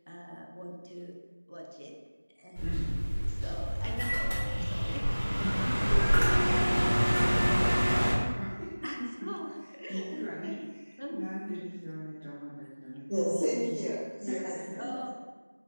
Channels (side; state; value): both; inverted; correlation -1.00